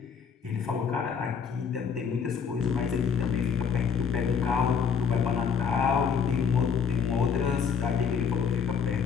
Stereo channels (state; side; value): quieter; right; 6.5 dB